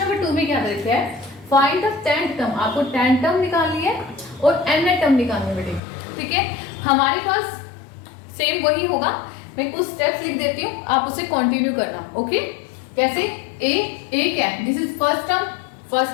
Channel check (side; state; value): right; drops out; at 5.8 s